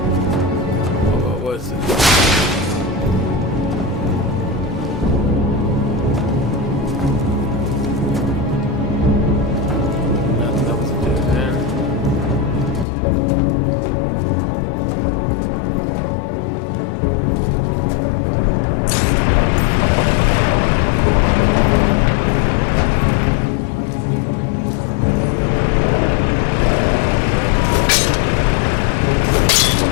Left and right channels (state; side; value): drops out; right; at 12.9 s